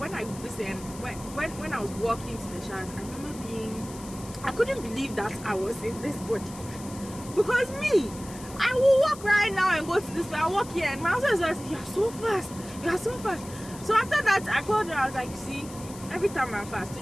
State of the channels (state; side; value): noise; left; hiss, 16 dB below the sound